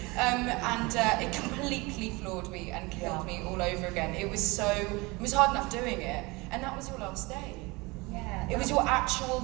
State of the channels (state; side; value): quieter; left; 24.6 dB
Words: And it completely floored me and killed me all over again. It was hard enough doing it, and that was your last day. Yeah. It was your actual